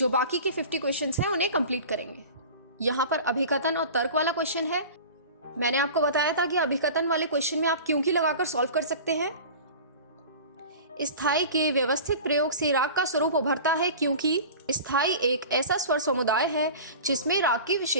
बाकी के 50 क्वेश्चंस हैं उन्हें कंप्लीट करेंगे। यहाँ पर अभिकथन और तर्क वाला क्वेश्चन है। मैंने आपको बताया था कि अभिकथन वाले क्वेश्चन में आप क्योंकि लगाकर सॉल्व कर सकते हैं। स्थाई के व्यवस्थित प्रयोग से राग का स्वरूप उभरता है क्योंकि स्थाई एक ऐसा स्वर समुदाय है जिसमें राग की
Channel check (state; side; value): inverted; both; correlation -0.37